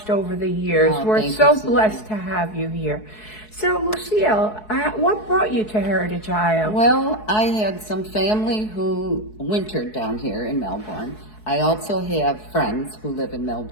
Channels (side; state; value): right; late; 4.7 ms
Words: over the years. Oh, We're thank so you, Susan. blessed to have you here. So, Lucille, what brought you to Heritage Isle? Well, I had some family who wintered down here in Melbourne. I also have friends who live in